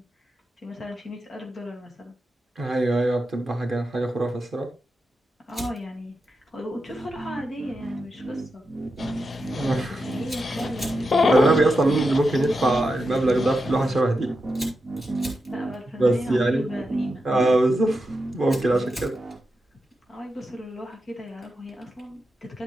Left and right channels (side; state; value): both; normal; correlation 0.88